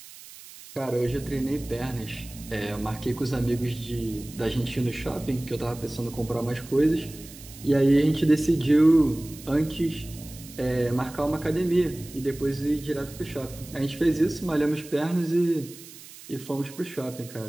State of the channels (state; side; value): noise; right; hiss, 17 dB below the sound